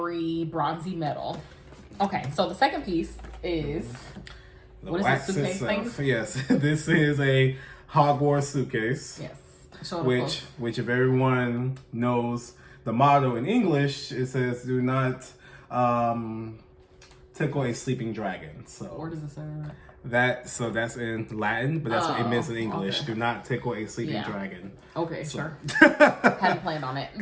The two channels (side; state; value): both; identical; correlation 1.00